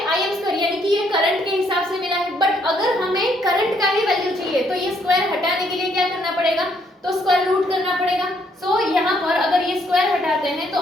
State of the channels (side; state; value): both; normal; correlation 0.70